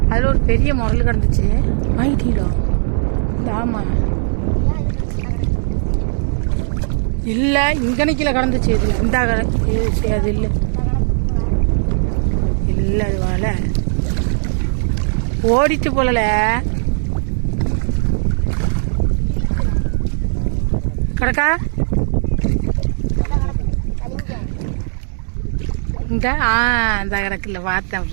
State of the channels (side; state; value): left; silent; digital silence